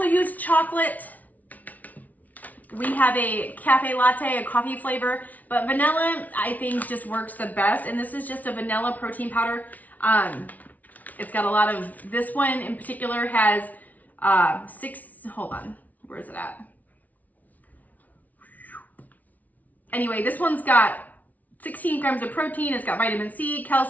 use chocolate. We have a cafe latte, a coffee flavor, but vanilla I think just works the best. And this is just a vanilla protein powder. It's got a lot of, this one in particular has hold on, where is it at? Anyway, this one's got 16 grams of protein. It's got vitamin C,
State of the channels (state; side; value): late; right; 0.075 ms